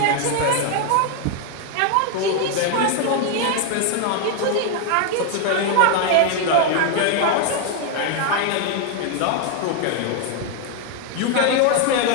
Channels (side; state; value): both; different; correlation 0.01